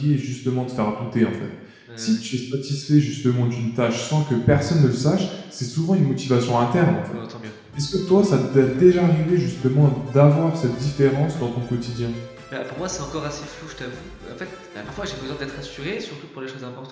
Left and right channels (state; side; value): identical; both; correlation 1.00